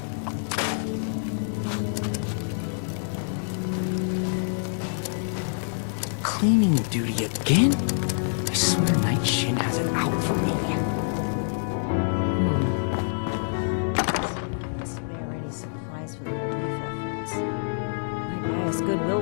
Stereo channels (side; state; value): right; silent; 61 dB below the other